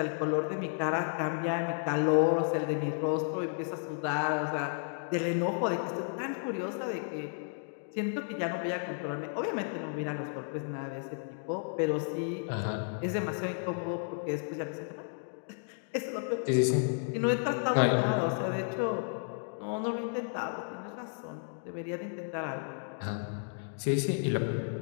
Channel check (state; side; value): silent; right; 56 dB below the other